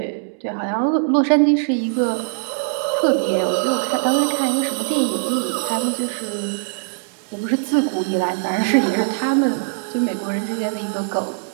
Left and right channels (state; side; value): silent; left; 65 dB below the other